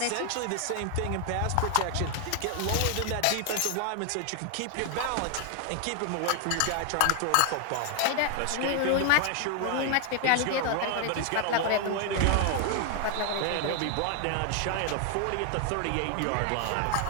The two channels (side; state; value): both; different; correlation 0.00